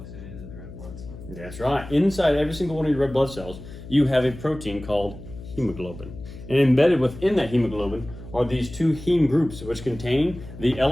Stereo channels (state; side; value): noise; left; hum, 14 dB below the sound